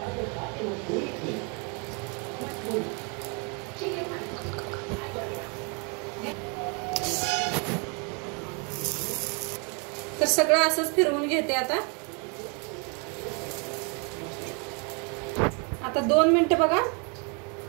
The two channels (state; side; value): quieter; left; 35.0 dB